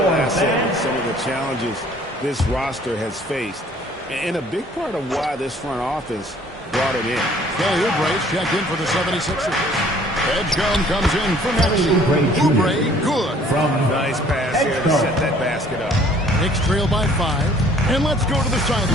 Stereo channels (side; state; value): both; normal; correlation 0.56